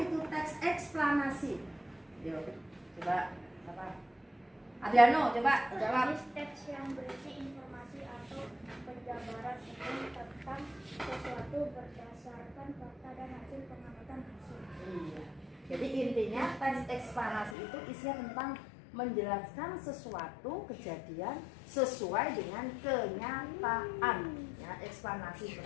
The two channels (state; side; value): drops out; right; at 17.6 s